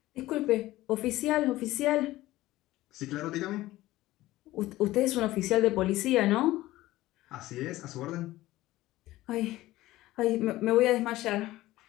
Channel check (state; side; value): quieter; right; 16.8 dB